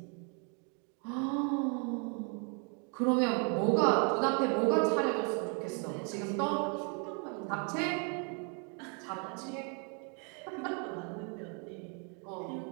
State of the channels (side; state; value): left; quieter; 37.8 dB